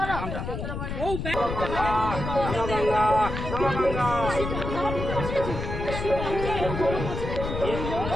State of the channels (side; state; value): left; noise; rumble, 5 dB below the sound